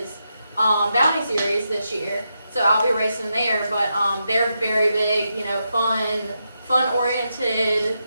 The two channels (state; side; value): inverted; both; correlation -0.85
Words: Bounty series this year, so I'll be racing there. But they're very big, fun oriented,